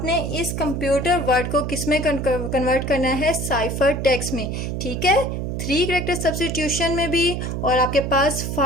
इस कंप्यूटर वर्ड को किस में कन्वर्ट करना है, साइफर टेक्स्ट में। ठीक है, 3 कैरेक्टर सब्स्टिट्यूशन में भी और आपके पास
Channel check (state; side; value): noise; right; hum, 3 dB below the sound